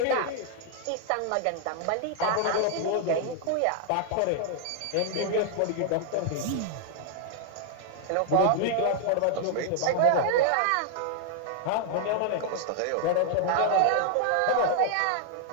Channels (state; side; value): different; both; correlation 0.00